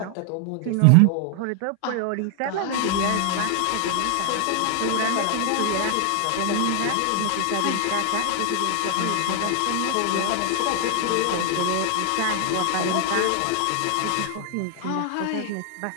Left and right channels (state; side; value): different; both; correlation 0.00